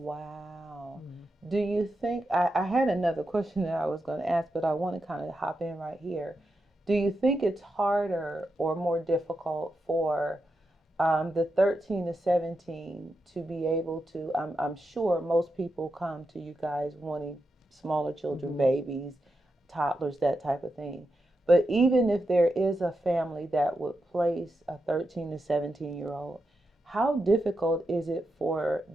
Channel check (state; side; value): normal; both; correlation 0.87